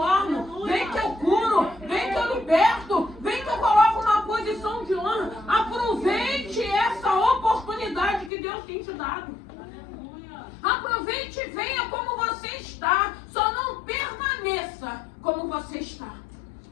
vem que eu curo, vem que eu liberto, vem que eu coloco numa posição de honra. Aproveite essa oportunidade que Deus tem te dado. Aproveite e venha como você está. Só não permaneça como você está.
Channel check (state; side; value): drops out; right; at 8.3 s